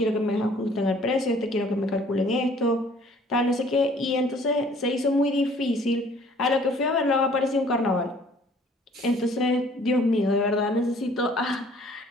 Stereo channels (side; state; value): both; normal; correlation 0.56